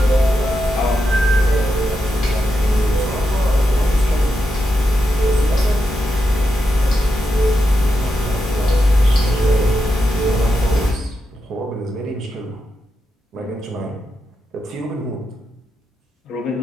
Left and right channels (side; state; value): both; normal; correlation 0.86